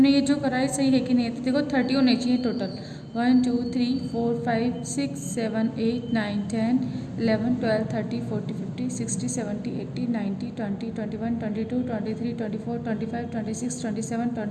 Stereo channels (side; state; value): both; identical; correlation 1.00